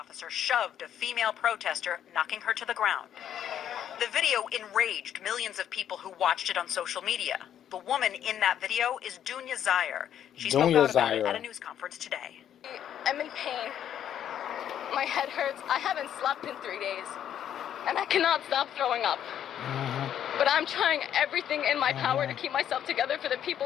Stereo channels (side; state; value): right; quieter; 10.0 dB